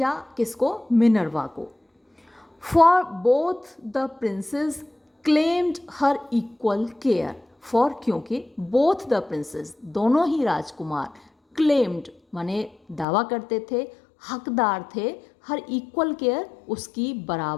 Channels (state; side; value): drops out; right; at 13.1 s